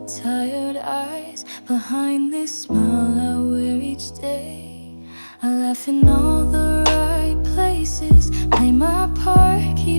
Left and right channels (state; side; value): inverted; both; correlation -1.00